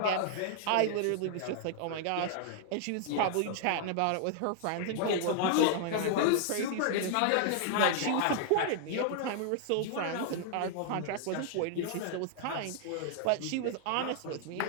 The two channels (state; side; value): different; both; correlation 0.00